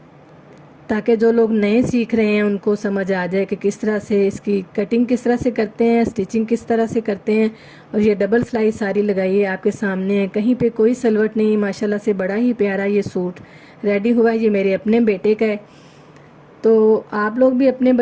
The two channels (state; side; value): identical; both; correlation 1.00